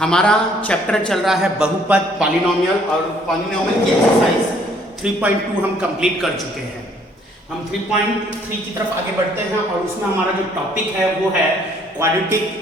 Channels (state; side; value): normal; both; correlation 0.62